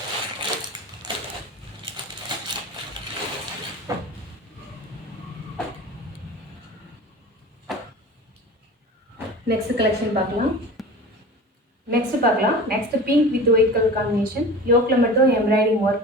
நெக்ஸ்ட் கலெக்ஷன் பார்க்கலாம். Next pink with white colour combination. யோக்கில் மட்டும் எம்ப்ராய்டிங்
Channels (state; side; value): normal; both; correlation 0.36